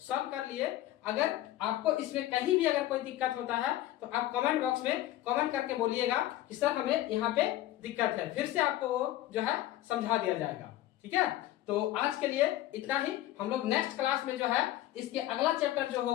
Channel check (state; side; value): quieter; right; 14.4 dB